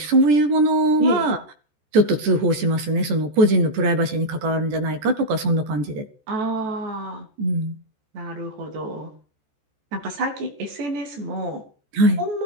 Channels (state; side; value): late; left; 14 ms